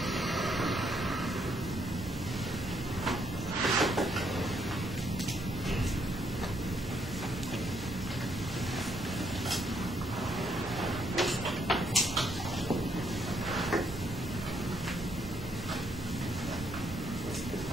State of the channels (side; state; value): right; noise; rumble, 12 dB below the sound